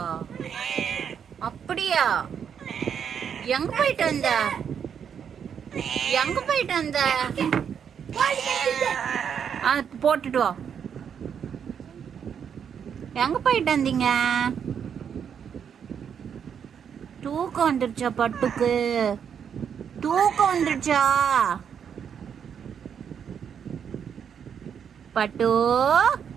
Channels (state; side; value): quieter; left; 7.8 dB